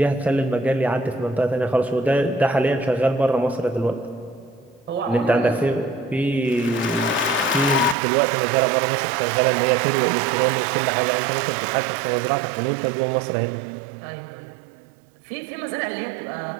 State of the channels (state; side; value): drops out; left; at 8.0 s